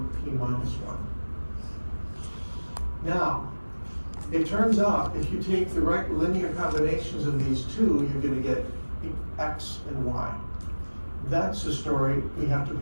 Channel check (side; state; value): both; inverted; correlation -1.00